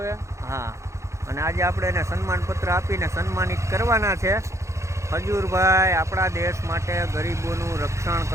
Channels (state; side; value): late; left; 0.14 ms